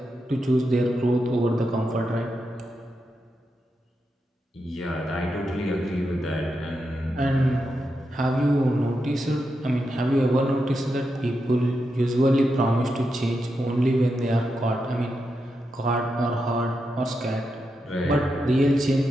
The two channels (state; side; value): normal; both; correlation 0.86